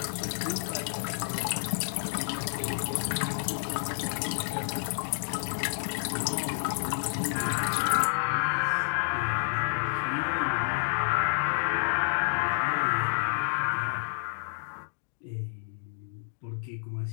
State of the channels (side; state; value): right; silent; digital silence